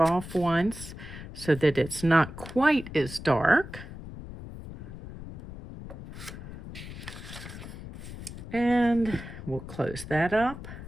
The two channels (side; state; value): left; noise; rumble, 12 dB below the sound